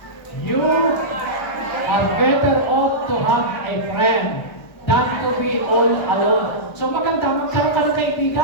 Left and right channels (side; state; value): right; late; 1.3 ms